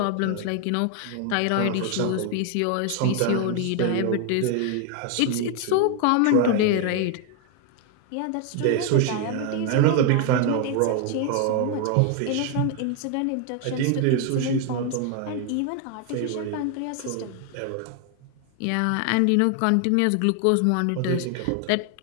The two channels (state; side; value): different; both; correlation 0.01